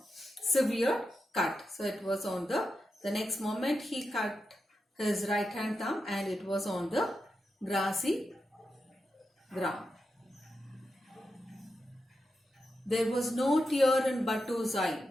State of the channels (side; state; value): both; normal; correlation 0.88